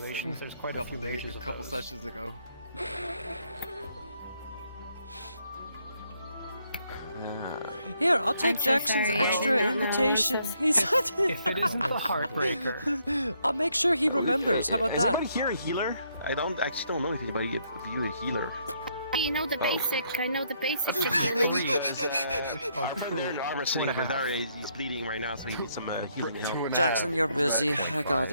there's quite a few mages a of couple those. sessions ago. Here, I'll take I'm so Jackson's sorry, I extra did not know invitation. this. He's If it isn't the heartbreaker, I'll make sure he remembers. How about Is that? anybody here a healer? I actually don't know if anybody of you a healer. You know the Oh. basic. I know the basics of healing. Our friend there in the armor sitting over there, he's bleeding right now, so he needs some healing help. Jackson, you're busy. I got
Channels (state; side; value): inverted; both; correlation -0.72